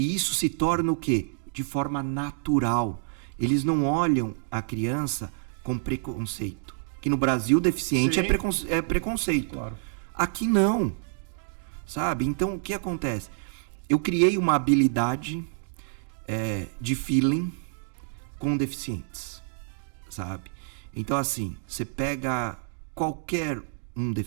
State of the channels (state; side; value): silent; left; digital silence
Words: isso se torna o quê? De forma natural. Eles não olham a criança com preconceito. Que no Brasil, deficiente é preconceito. Claro. Aqui não. Sabe? Então, o que acontece? Eu criei uma habilidade de feeling com deficientes. Sabe? Então, assim, você pega qualquer um